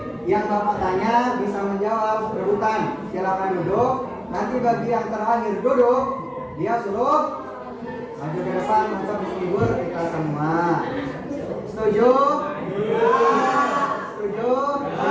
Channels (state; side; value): identical; both; correlation 1.00